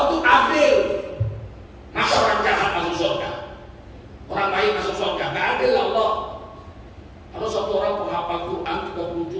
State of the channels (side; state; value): both; identical; correlation 1.00